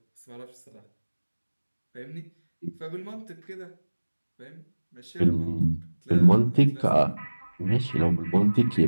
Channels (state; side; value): inverted; both; correlation -1.00